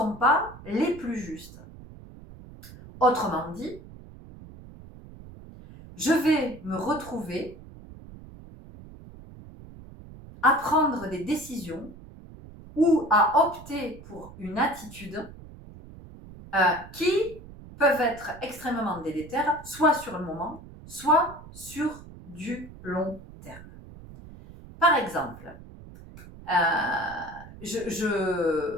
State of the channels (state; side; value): noise; right; rumble, 17 dB below the sound